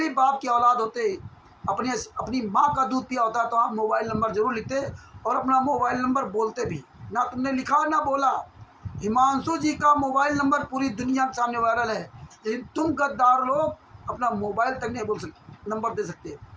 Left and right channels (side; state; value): both; identical; correlation 1.00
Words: बाप की औलाद होते, अपनी माँ का दूध पिया होता, तो आप मोबाइल नंबर जरूर लिखते और अपना मोबाइल नंबर बोलते भी। ना तुमने लिखा ना बोला। हिमांशु जी का मोबाइल नंबर पूरी दुनिया के सामने वायरल है, लेकिन तुम गद्दार लोग अपना मोबाइल तक नहीं बोल सकते, नंबर दे सकते।